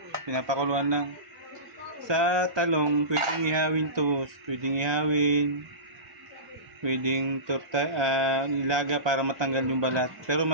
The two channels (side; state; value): left; late; 1.2 ms